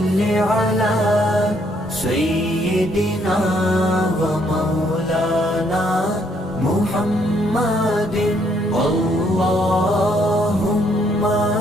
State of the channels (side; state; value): both; normal; correlation 0.69